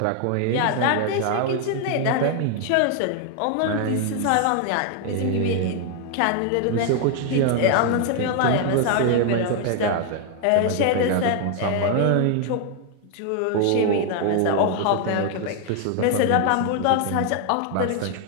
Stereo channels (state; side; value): different; both; correlation 0.00